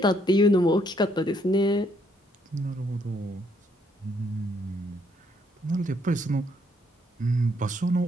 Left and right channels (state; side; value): normal; both; correlation 0.70